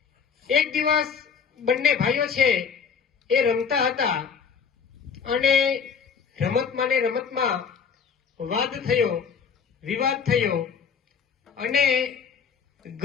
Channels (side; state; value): right; quieter; 6.4 dB